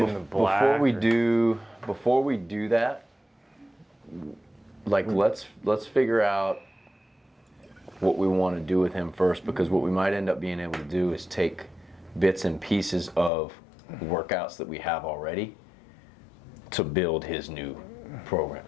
Before we do that, like let's figure out what we want to do with him first, because what we might end up being able to do is take bits and pieces of workouts that we have already to build his new program.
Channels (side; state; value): right; drops out; at 13.3 s